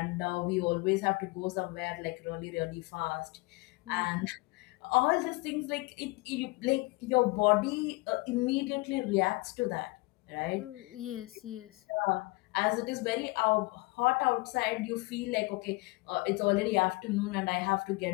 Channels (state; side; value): quieter; right; 24.5 dB